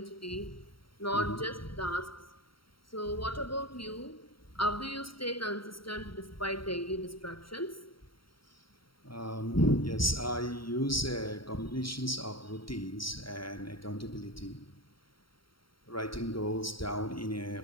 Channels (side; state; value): right; late; 0.73 ms